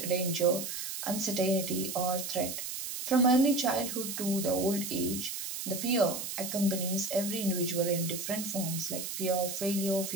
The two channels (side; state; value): right; noise; hiss, 5 dB below the sound